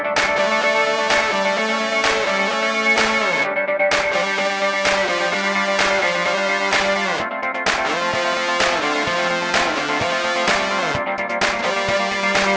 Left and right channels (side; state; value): both; identical; correlation 1.00